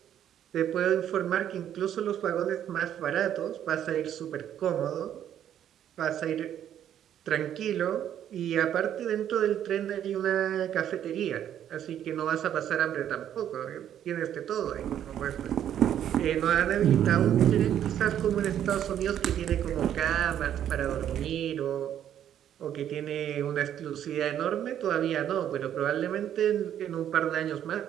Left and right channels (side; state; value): left; quieter; 10.3 dB